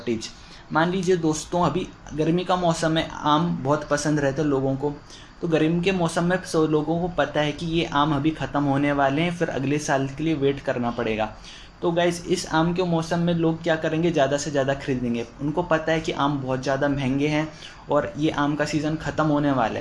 मान लीजिए दोस्तों अभी गर्मी का मौसम है, आम बहुत पसंद रहते हैं लोगों को, तो गर्मी के मौसम में सब लोगों को पता है कि ये आम अभी ख़त्म होने वाले हैं, फिर अगले साल के लिए वेट करना पड़ेगा। तो गाइस इस आम के मौसम में लोग क्या करेंगे, ज़्यादा से ज़्यादा खरीदेंगे। उनको पता है कि आम बहुत ज़्यादा महंगे हैं और ये आम का सीज़न ख़त्म होने वाला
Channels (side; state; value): both; identical; correlation 1.00